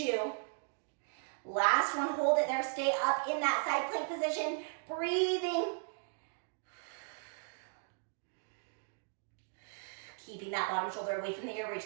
Last one, hold it there. Stay up in that side plank position. Breathing. Keeping that bottom shoulder away from the ear. Reach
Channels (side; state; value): left; silent; digital silence